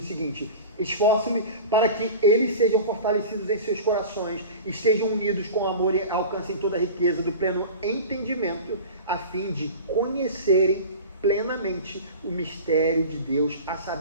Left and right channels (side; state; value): both; inverted; correlation -0.34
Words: o seguinte: esforço-me para que eles sejam fortalecidos em seus corações, estejam unidos com amor e alcancem toda a riqueza do pleno entendimento, a fim de conhecerem plenamente o mistério de Deus, a